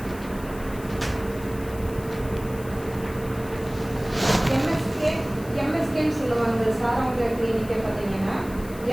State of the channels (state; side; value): noise; left; hiss, 19 dB below the sound